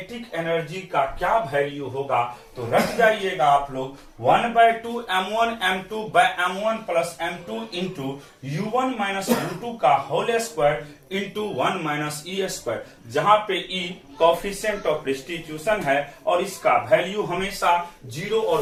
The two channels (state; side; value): identical; both; correlation 1.00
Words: एनर्जी का क्या वैल्यू होगा। तो रख जाइएगा आप लोग 1/2 M1 M2 by M1 plus M2 into U1 minus U2 का whole square into 1 minus E square, जहां पे ई कोफिशिएंट ऑफ रिस्टिट्यूशन है और इसका वैल्यू हमेशा 0